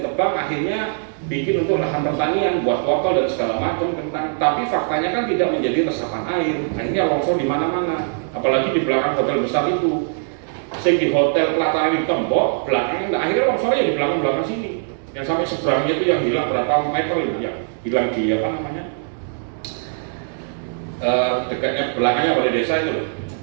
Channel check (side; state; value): left; silent; digital silence